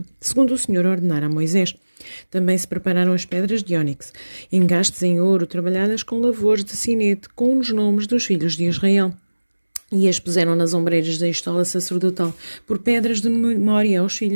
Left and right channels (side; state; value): both; inverted; correlation -1.00